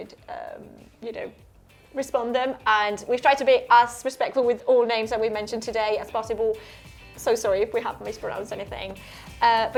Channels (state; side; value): identical; both; correlation 1.00